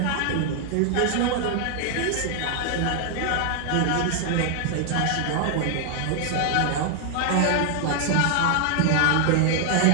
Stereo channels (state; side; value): different; both; correlation 0.00